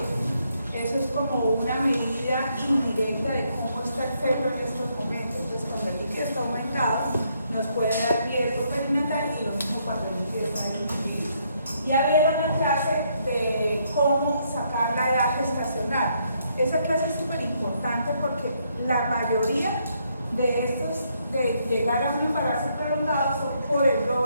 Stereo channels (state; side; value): inverted; both; correlation -0.73